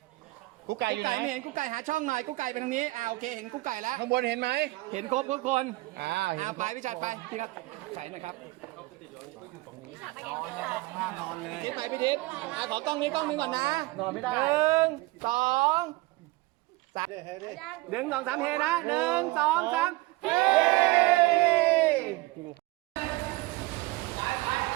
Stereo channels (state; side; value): quieter; left; 21.3 dB